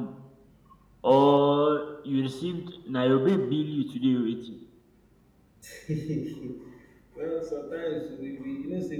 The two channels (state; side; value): identical; both; correlation 1.00